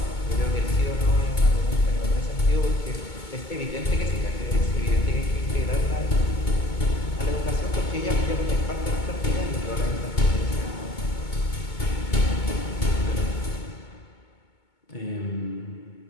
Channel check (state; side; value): late; right; 2.2 ms